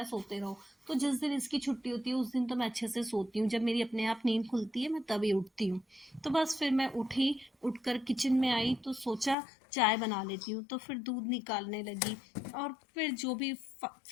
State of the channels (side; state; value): right; drops out; at 9.3 s